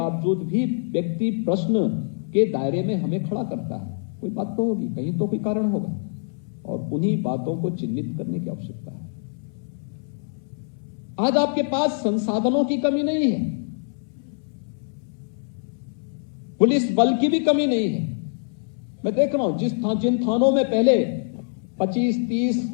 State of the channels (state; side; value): silent; right; 62 dB below the other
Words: भी व्यक्ति प्रश्न के दायरे में हमें खड़ा करता है? कोई बात तो होगी, कहीं तो कोई कारण होगा, और उन्हीं बातों को चिन्हित करने की आवश्यकता है। आज आपके पास संसाधनों की कमी नहीं है, पुलिस बल की भी कमी नहीं है। मैं देख रहा हूं जिन थानों में पहले 25-30